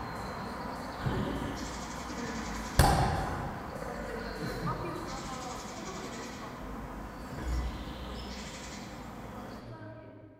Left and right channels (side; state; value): both; identical; correlation 1.00